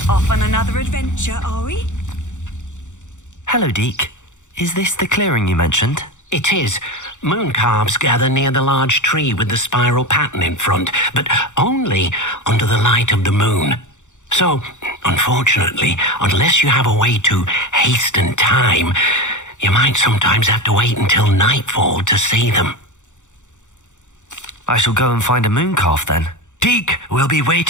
Off on another adventure, are we? Hello, Deke. Is this the clearing you mentioned? It is. Moon calves gather near the large tree with the spiral pattern in front, but only under the light of the moon. So, unfortunately, unless you have a way to hasten time, you might sometimes have to wait until nightfall to see them. I shall go and find a moon calf then. Deke will be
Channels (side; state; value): right; late; 0.85 ms